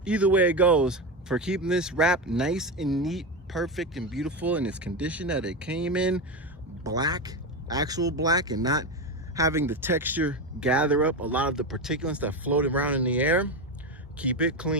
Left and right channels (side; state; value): both; normal; correlation 0.16